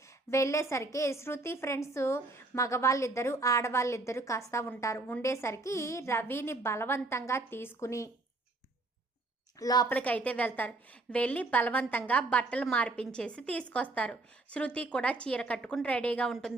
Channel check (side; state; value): left; quieter; 3.1 dB